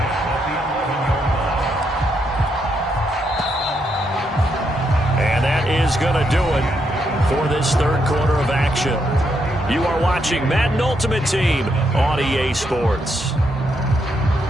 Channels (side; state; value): both; normal; correlation 0.78